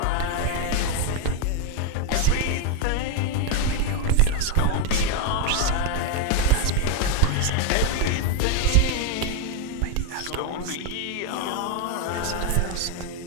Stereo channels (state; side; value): different; both; correlation 0.02